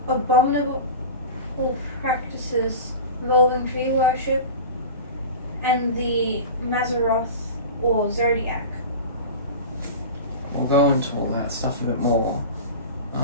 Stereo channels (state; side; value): inverted; both; correlation -0.31